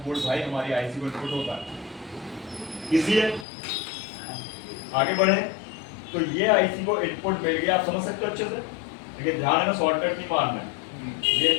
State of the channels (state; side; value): drops out; right; at 3.5 s